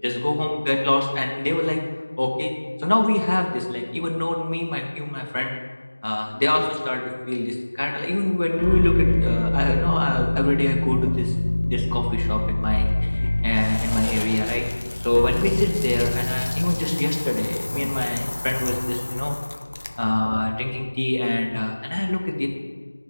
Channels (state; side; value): inverted; both; correlation -1.00